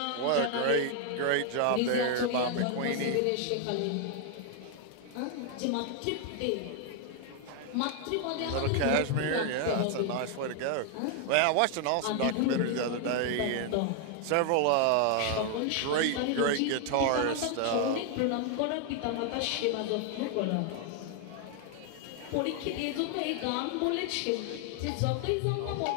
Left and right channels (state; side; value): different; both; correlation 0.00